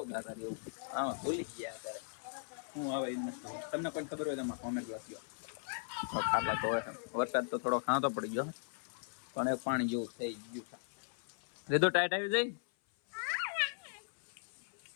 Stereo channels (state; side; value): silent; right; 52 dB below the other